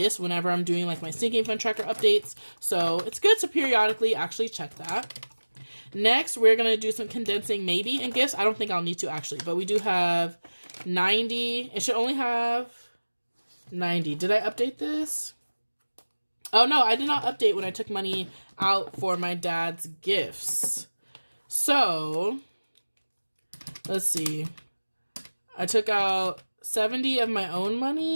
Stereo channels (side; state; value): both; inverted; correlation -1.00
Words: whenever I'm doing like my sinking fund tracker updates. So it's good to periodically actually check that. Next, we're going to do some condensing maybe in gifts. I don't think I'll need to actually, but we do have 90. It should only have 90. Did I update this? Oh no, I did not update when I took money out for my dad's gifts. So let's see. I took out 70 of my own